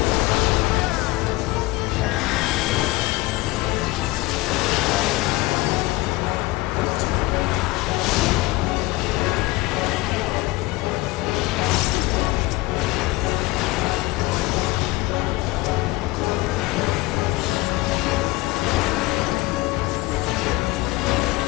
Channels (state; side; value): quieter; right; 20.7 dB